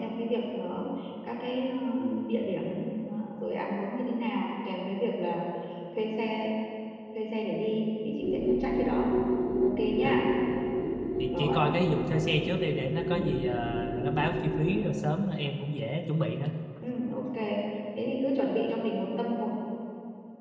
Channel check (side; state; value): both; identical; correlation 1.00